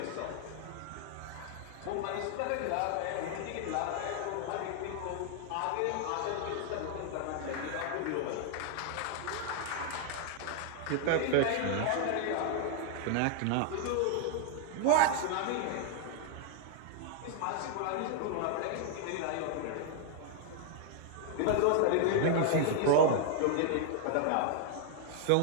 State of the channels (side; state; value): both; different; correlation 0.00